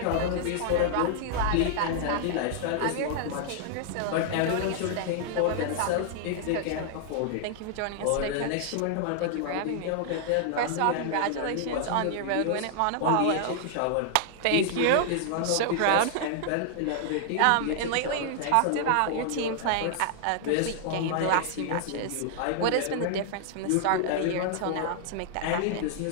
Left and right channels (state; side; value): different; both; correlation -0.01